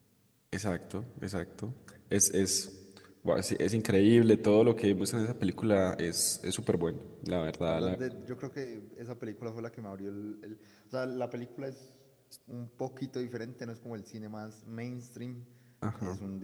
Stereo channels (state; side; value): identical; both; correlation 1.00